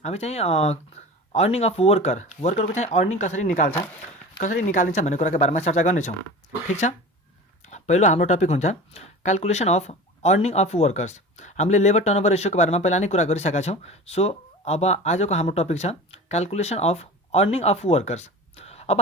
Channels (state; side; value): normal; both; correlation 0.34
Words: हामी चाहिँ अर्निङ अफ वर्करको चाहिँ अर्निङ कसरी निकालिन्छ भन्ने कुराको बारेमा चर्चा गर्नेछौँ। ठिक छ, पहिलो हाम्रो टपिक हुन्छ calculation of earning of workers. हामीले लेबर टर्नओभर रेसियोको बारेमा पहिला नै कुरा गरिसकेका छौँ। सो अब आजको हाम्रो टपिक छ calculation of earning of workers. अब